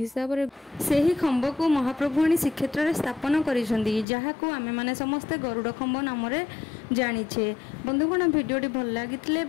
रे सेही खंब को महाप्रभु आनी श्रीक्षेत्र रे स्थापन करिसंदी जहाको आमे माने समस्ते गरुड़ खंब नाम रे जानिछे। बंधुगण वीडियोटी भल लागिथिले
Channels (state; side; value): drops out; right; at 4.0 s